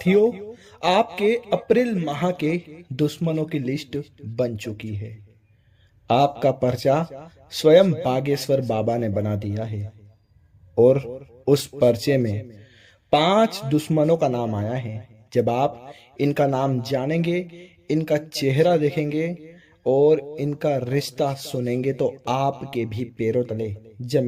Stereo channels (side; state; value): both; identical; correlation 1.00